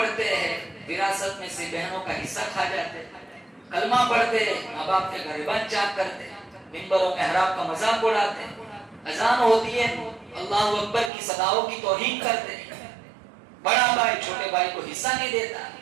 ہیں وراثت میں سے بہنوں کا حصہ کھا جاتے ہیں، کلمہ پڑھتے ہیں ماں باپ کے غریبان چاک کرتے ہیں، منبروں محراب کا مذاق اڑاتے ہیں، اذان ہوتی ہے اللہ اکبر کی صداؤں کی توہین کرتے ہیں، بڑا بھائی چھوٹے بھائی کو حصہ نہیں دیتا،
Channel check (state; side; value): drops out; left; at 11.1 s